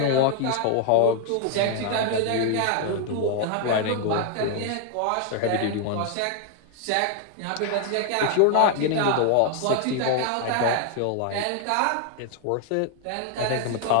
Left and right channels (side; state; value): both; different; correlation 0.00